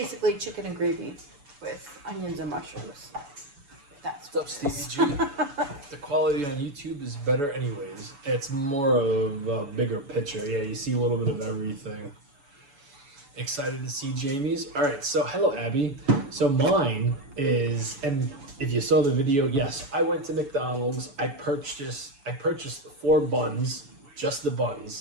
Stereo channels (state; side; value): late; left; 7.0 ms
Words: chicken and gravy with onions and mushrooms. That's what's up, Stevie G. The quality on YouTube is better anyways. It's more of a bigger picture. Yeah, you see a little bit of everything. Excited to see Jamie's. All right, so hello, Abby. So mine is, and if you saw the video, yes, I went to McDonald's. I purchased 4 buns, just the